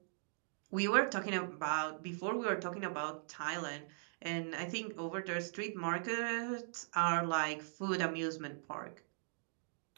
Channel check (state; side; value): silent; left; digital silence